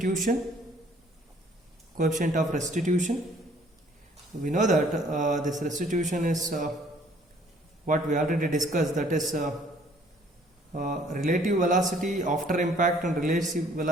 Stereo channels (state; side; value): normal; both; correlation 0.59